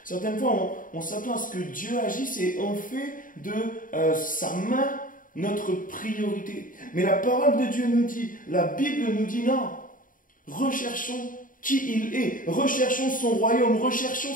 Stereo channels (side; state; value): right; late; 0.39 ms